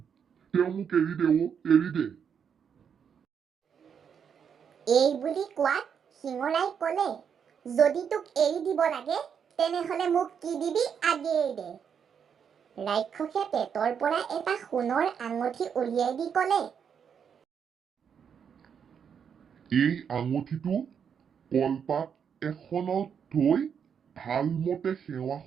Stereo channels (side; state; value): left; quieter; 7.4 dB